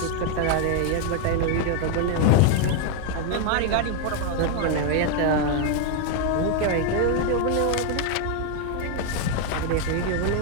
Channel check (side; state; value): both; different; correlation 0.01